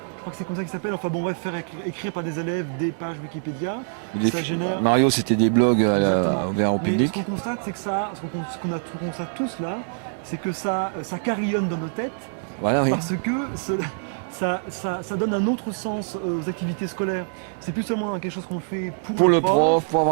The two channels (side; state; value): left; silent; digital silence